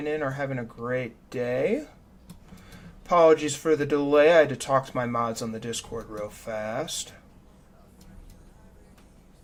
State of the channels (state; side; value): identical; both; correlation 1.00